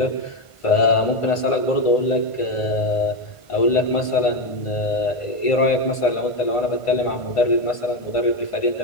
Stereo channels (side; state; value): right; late; 1.5 ms